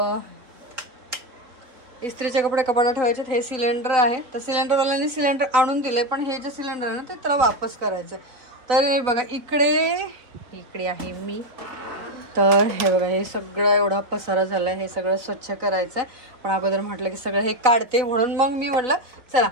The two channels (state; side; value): late; left; 3.8 ms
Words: इस्त्रीचे कपडे कपाटात ठेवायचे। हे सिलेंडर आहे, तर सिलेंडरवाल्याने सिलेंडर आणून दिले पण हे जे सिलेंडर आहे ना ते त्याला वापस करायचं। तर बघा इकडे आहे मी। तर हे बघा हे सगळं एवढा पसारा झाला आहे, हे सगळं स्वच्छ करायचं आहे। पण अगोदर म्हटलं की सगळं हे काढते, म्हणून मग मी म्हटलं चला